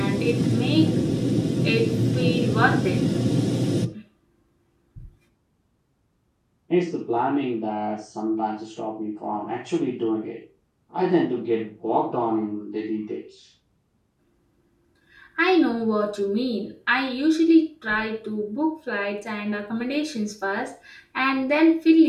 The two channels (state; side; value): identical; both; correlation 1.00